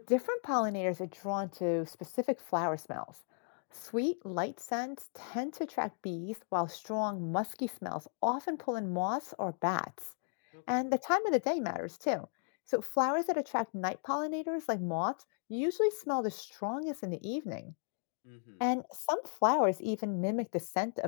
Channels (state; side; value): silent; right; 54 dB below the other